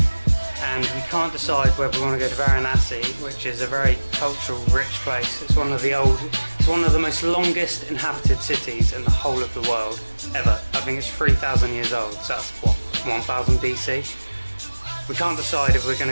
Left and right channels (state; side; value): inverted; both; correlation -1.00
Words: And we can't decide whether we want to go to Varanasi, which is a very cultural, rich place. It's one of the most longest inhabited cities in the whole of the world ever. I think it's 3,000 years old, so that's what, 1000 BC? We can't decide if we're